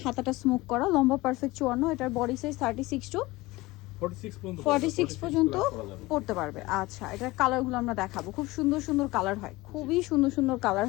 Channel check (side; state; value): right; quieter; 20.5 dB